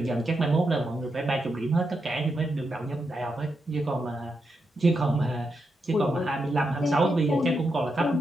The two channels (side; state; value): both; normal; correlation 0.84